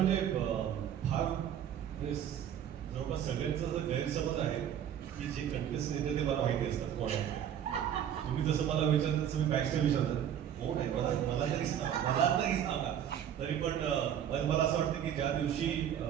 फार म्हणजे जवळपास सगळ्यांचा जर गैरसमज आहे की जे कंटेस्टंट येते ते मला माहिती असतात कोण आहे. तुम्ही जसं मला विचारता तसं मी बॅकस्टेज विचारतात कोण आहे, मला तरी सांगा. तरी पण मला असं वाटतं की ज्या दिवशी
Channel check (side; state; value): left; quieter; 9.7 dB